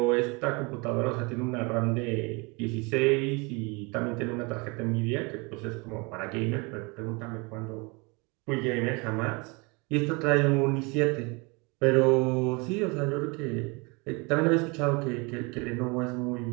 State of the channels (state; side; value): quieter; left; 28.8 dB